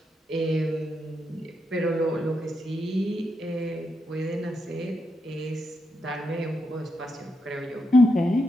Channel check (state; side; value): normal; both; correlation 0.83